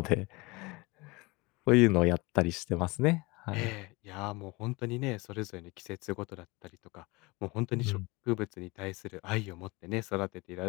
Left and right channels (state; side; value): quieter; right; 24.6 dB